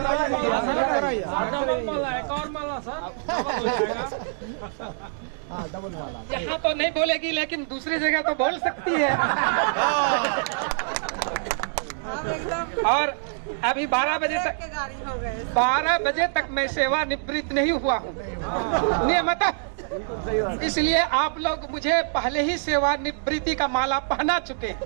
यहाँ तो नहीं बोलेगी लेकिन दूसरी जगह तो बोल सकती है। और अभी 12 बजे तक मैं सेवानिवृत्त नहीं हुआ हूँ नियमतः, इसलिए आप लोग मुझे पहले ही सेवानिवृत्ति का माला पहना चुके हैं,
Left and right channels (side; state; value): left; silent; digital silence